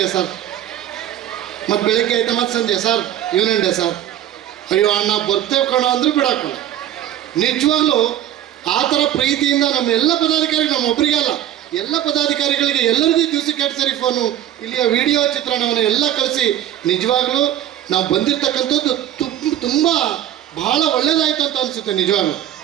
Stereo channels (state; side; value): quieter; left; 11.9 dB